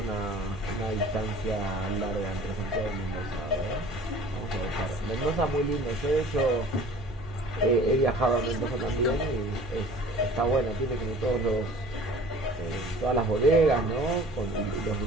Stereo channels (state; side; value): normal; both; correlation 0.47